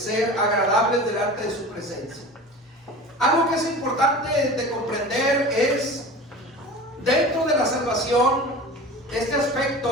agradables delante de su presencia. Algo que es importante de comprender es, dentro de la salvación, este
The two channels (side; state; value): both; normal; correlation 0.36